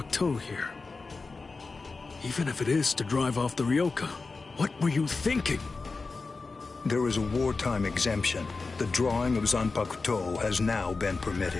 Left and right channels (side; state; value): right; quieter; 4.1 dB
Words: here. Even if it is to drive off the Ryoka, what were you thinking? There is a wartime exemption. The drawing of Zanpakuto has now been